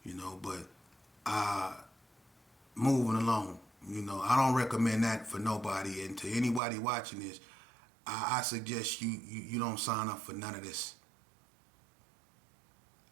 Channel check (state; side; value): drops out; left; at 6.6 s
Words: But moving along, I don't recommend that for nobody, and to anybody watching this, I suggest you don't sign up for none of this.